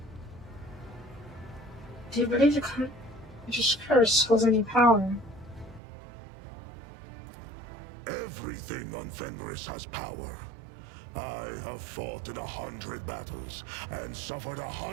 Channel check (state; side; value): drops out; left; at 5.8 s